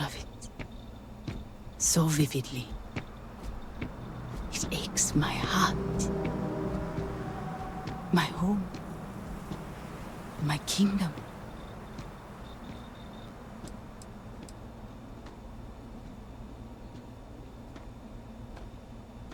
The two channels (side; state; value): both; identical; correlation 1.00